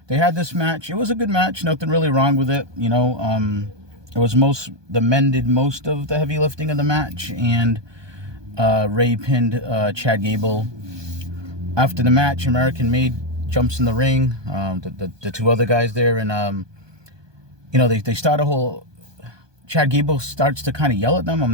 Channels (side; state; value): left; late; 1.2 ms